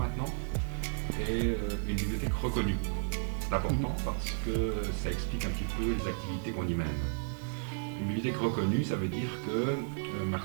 est une bibliothèque reconnue. C'est important parce que ça explique un petit peu les activités qu'on y mène. Une bibliothèque reconnue, ça veut dire que ma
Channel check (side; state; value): left; silent; digital silence